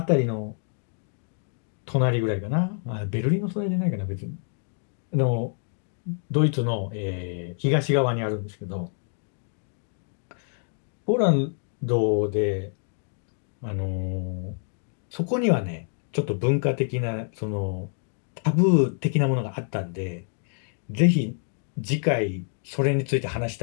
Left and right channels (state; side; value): silent; right; 57 dB below the other